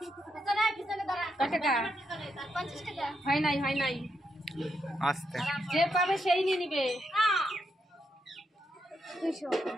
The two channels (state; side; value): normal; both; correlation 0.81